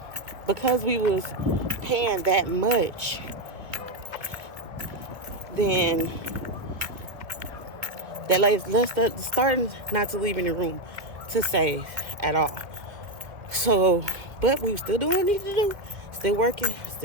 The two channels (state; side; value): late; left; 1.9 ms